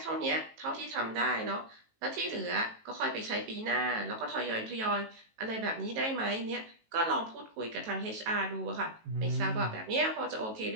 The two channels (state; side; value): late; left; 18 ms